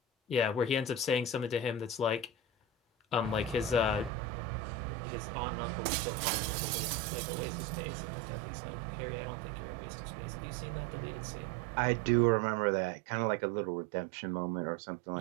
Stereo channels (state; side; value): drops out; left; at 4.1 s